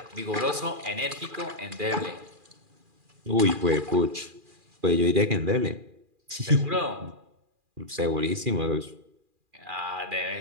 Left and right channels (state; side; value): late; left; 2.4 ms